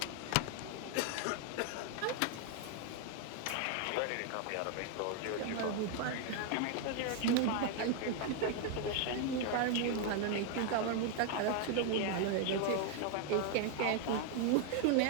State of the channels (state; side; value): different; both; correlation 0.00